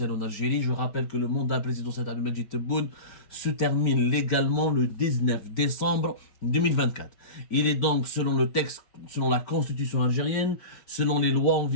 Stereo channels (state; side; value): late; right; 5.1 ms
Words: en Algérie. Je rappelle que le mandat présidentiel d'Abdelmadjid Tebboune se termine légalement le 19 décembre 2024. Il est donc, selon le texte, selon la constitution algérienne, selon les lois en